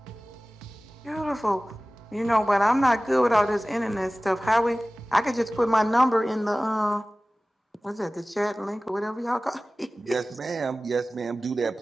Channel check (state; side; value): normal; both; correlation 0.97